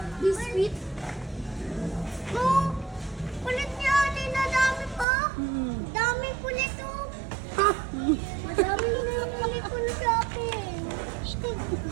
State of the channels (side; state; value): left; drops out; at 5.1 s